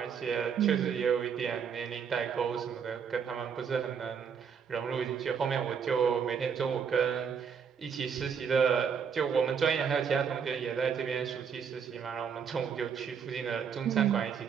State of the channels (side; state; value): left; quieter; 6.9 dB